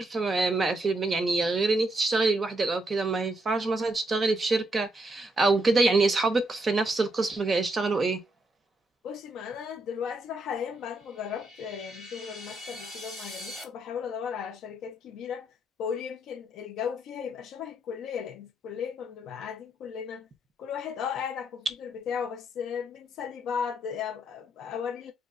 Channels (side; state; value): both; normal; correlation 0.77